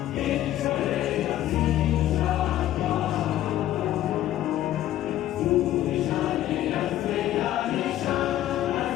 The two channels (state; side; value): quieter; right; 13.2 dB